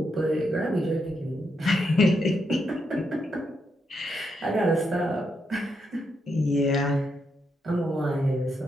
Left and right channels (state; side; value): normal; both; correlation 0.81